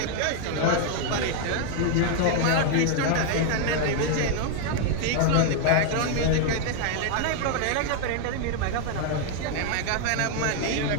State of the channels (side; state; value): both; different; correlation 0.00